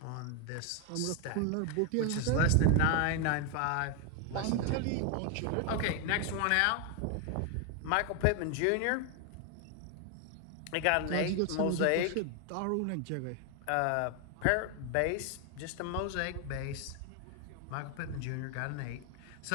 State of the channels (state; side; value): different; both; correlation 0.01